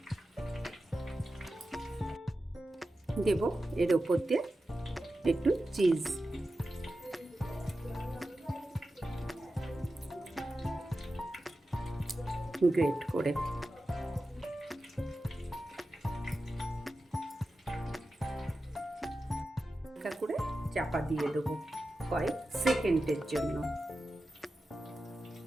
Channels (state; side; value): normal; both; correlation 0.92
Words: দেব এর ওপর দিয়ে একটু চিজ, গ্রেট করে। হালকা করে চাপা দিয়ে দেবো কয়েক সেকেন্ডের জন্য।